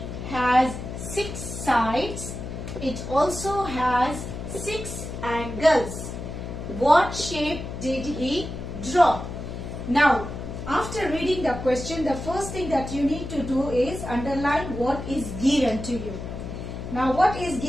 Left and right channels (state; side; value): noise; left; hum, 8 dB below the sound